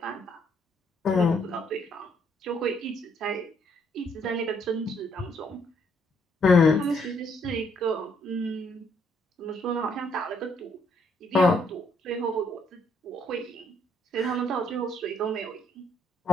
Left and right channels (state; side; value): normal; both; correlation 0.71